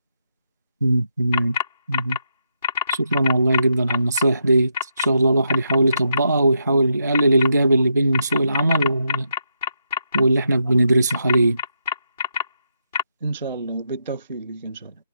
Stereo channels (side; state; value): both; inverted; correlation -0.81